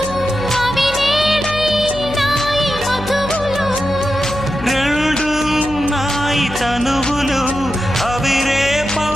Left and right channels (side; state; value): left; noise; hum, 12 dB below the sound